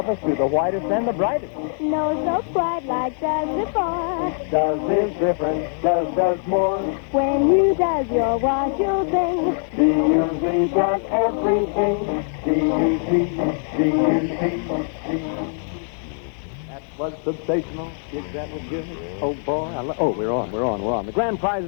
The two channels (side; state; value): right; silent; 64 dB below the other